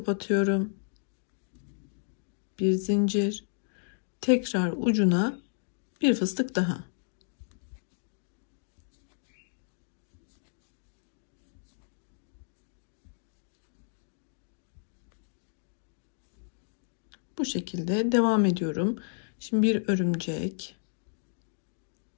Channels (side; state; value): right; silent; digital silence